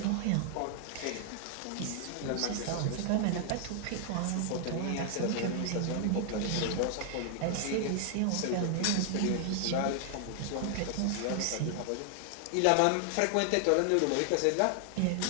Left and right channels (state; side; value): different; both; correlation 0.00